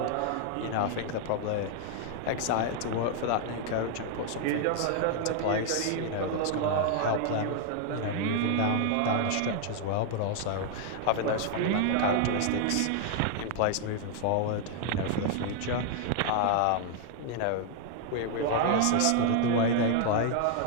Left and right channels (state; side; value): different; both; correlation 0.00